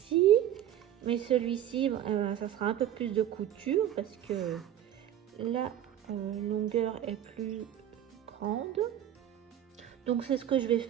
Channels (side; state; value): left; quieter; 11.1 dB